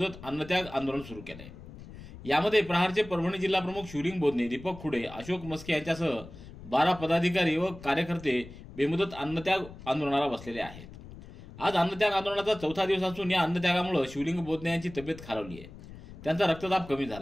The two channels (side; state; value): left; noise; rumble, 16 dB below the sound